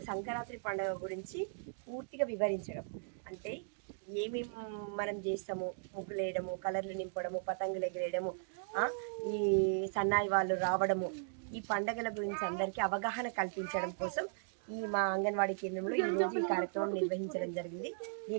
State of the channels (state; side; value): silent; left; digital silence